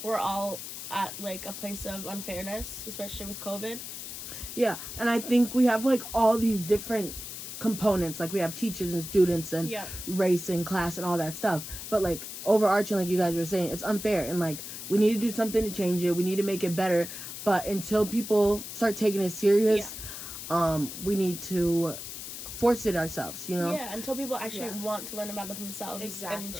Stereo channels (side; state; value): left; noise; hiss, 9 dB below the sound